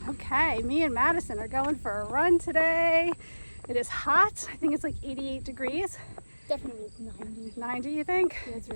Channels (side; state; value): both; inverted; correlation -1.00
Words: Okay, me and Madison are going for a run today. It is hot. I think it's like 88 degrees. Definitely 90. 90, you think? Yeah, it's